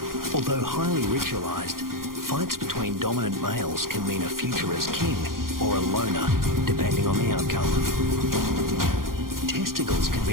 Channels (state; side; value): late; left; 0.91 ms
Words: Although highly ritualized, fights between dominant males can mean a future as king or a loner, depending on the outcome. Testicles can